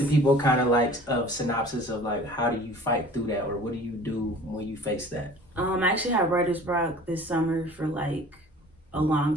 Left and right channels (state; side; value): normal; both; correlation 0.46